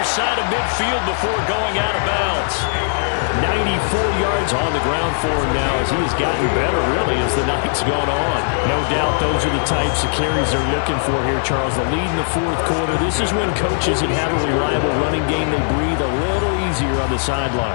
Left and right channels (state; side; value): silent; right; 55 dB below the other